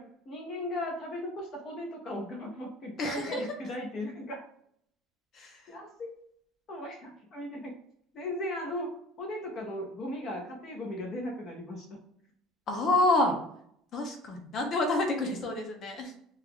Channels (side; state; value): both; normal; correlation 0.45